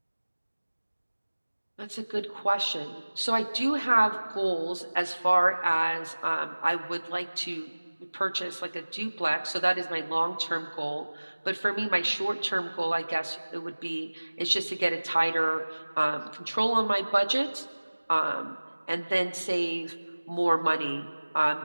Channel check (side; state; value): both; inverted; correlation -1.00